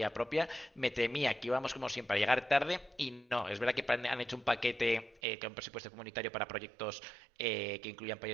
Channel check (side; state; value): left; drops out; at 5.2 s